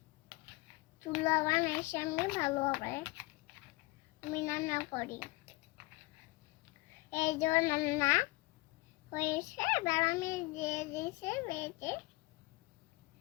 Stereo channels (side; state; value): right; quieter; 23.2 dB